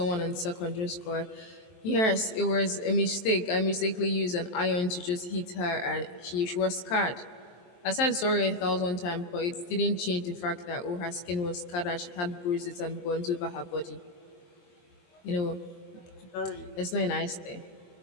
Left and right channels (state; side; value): late; right; 23 ms